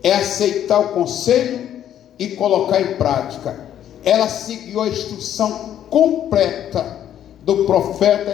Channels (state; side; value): quieter; right; 10.7 dB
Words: é aceitar o conselho e colocar em prática. Ela seguiu a instrução completa do profeta